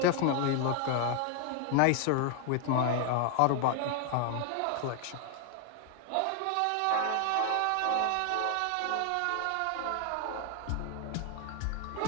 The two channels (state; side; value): different; both; correlation 0.00